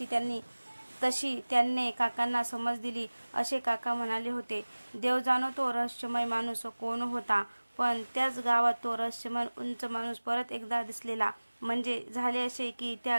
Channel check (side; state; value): both; inverted; correlation -1.00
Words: तशी त्यांनी काकांना समज दिली. असे काका म्हणाले होते. देव जाणो तो रहस्यमय माणूस कोण होता. पण त्याच गावात तो रहस्यमय उंच माणूस परत एकदा दिसलेला. म्हणजे झाले असे की त्या